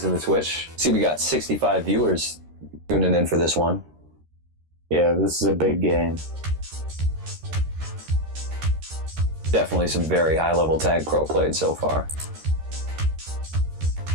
in the Twitch? See, we got 65 viewers tuning in for this one. Yeah, this is a big game. Definitely some very high-level tag pro played so far.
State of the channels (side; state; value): left; late; 13 ms